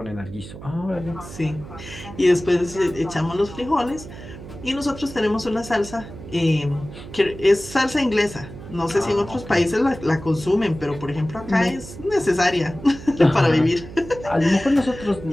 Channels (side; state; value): right; noise; hum, 14 dB below the sound